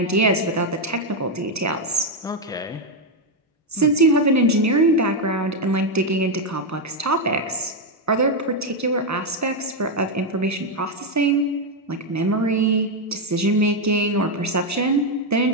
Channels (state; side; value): normal; both; correlation 0.04